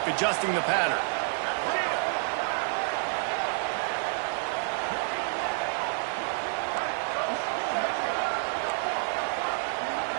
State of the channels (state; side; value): silent; left; 59 dB below the other